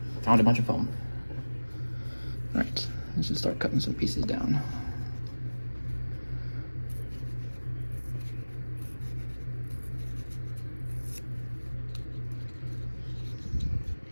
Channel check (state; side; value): inverted; both; correlation -1.00